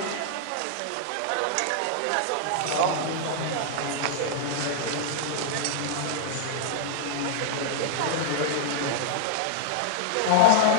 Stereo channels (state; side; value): different; both; correlation -0.01